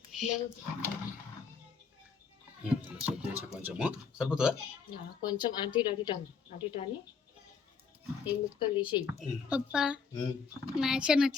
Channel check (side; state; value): right; quieter; 5.4 dB